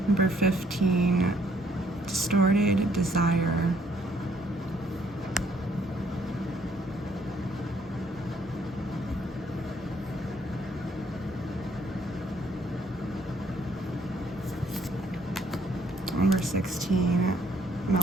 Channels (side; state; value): both; normal; correlation 0.66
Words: Number 15, distorted desire. Number 16,